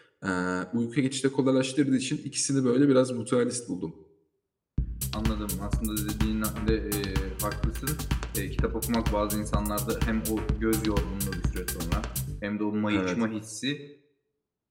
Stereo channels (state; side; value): identical; both; correlation 1.00